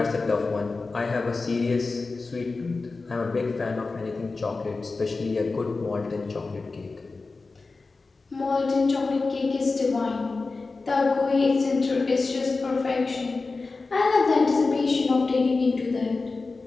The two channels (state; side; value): quieter; right; 3.9 dB